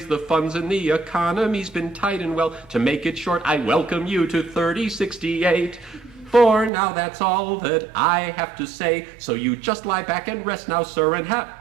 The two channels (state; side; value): drops out; left; at 6.7 s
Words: the funds and the economy's been tight, and well, to make it short, I welcome you to 3068. For now, that's all that I have to say, so you just lie back and rest now, sir, and